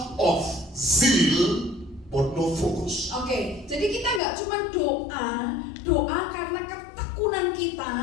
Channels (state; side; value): drops out; right; at 4.2 s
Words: of zeal but no focus. Oke, jadi kita nggak cuma doa karena ketekunan kita,